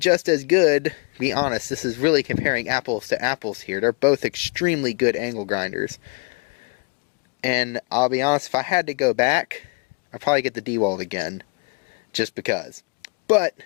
as good, to be honest, this is really comparing apples to apples here. They're both extremely good angle grinders. And I'll be honest, if I had to go back, I'd probably get the DeWalt again. Just because. But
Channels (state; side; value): quieter; right; 30.1 dB